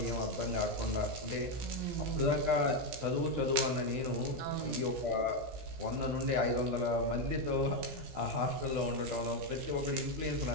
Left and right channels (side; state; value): left; late; 16 ms